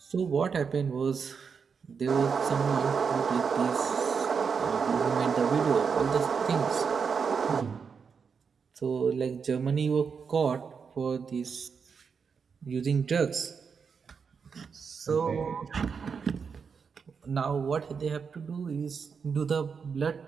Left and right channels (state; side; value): quieter; left; 6.0 dB